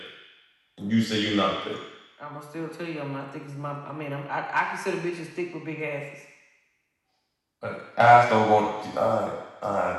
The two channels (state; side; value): identical; both; correlation 1.00